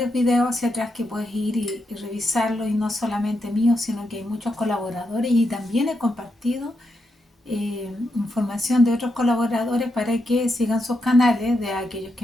videos hacia atrás que puedes ir y revisarlo, y no solamente míos, sino que hay muchos colaboradores y también he compartido información de otros colaboradores para que sigan sus canales, de aquellos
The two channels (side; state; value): both; normal; correlation 0.83